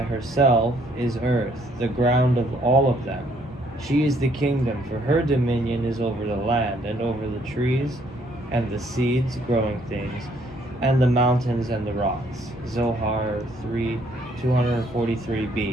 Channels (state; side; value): normal; both; correlation 0.66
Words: is earth, the ground of all of them. She is the kingdom, for her dominion is over the land, and over the trees, and the seeds, growing things, and the mountains and the rocks. Zohar